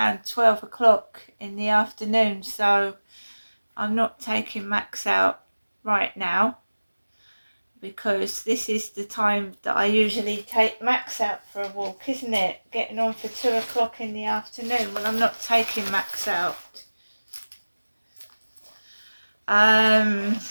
12 o'clock in the afternoon, so I'm not taking Max out right now because this is the time that I usually take Max out for a walk, isn't it? Getting on for 2 o'clock in the afternoon. Well, I'm not taking Max out. I'm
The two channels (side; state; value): both; inverted; correlation -1.00